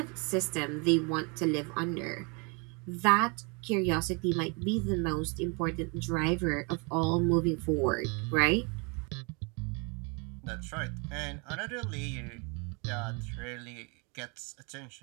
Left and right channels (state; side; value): quieter; left; 32.1 dB